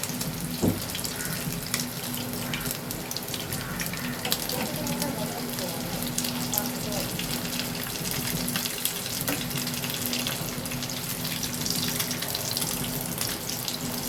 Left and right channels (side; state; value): both; identical; correlation 1.00